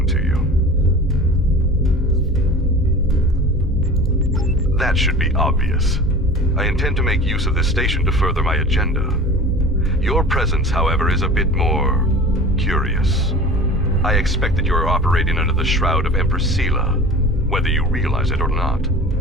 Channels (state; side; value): normal; both; correlation 0.38